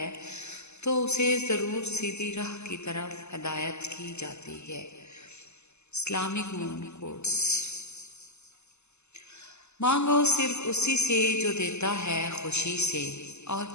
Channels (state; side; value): late; right; 0.82 ms